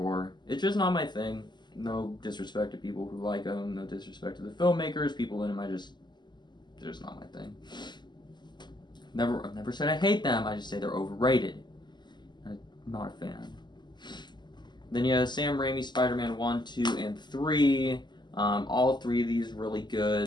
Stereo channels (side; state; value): right; late; 0.21 ms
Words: It's just not my thing. No disrespect to people who like them. No disrespect to the filmmakers. People in them, they're just not my thing. I've never said I hate them. I just say they're overrated. I'm not a fan. Then you have Sam Raimi, Spider-Man 1, 2, and 3. All 3 of these really